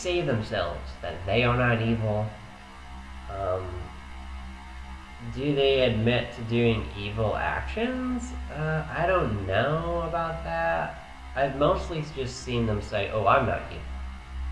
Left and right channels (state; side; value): identical; both; correlation 1.00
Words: themselves that they are not evil. Do they admit to doing evil actions? I don't know about that. I've mostly just seen them say, oh, I'm not evil.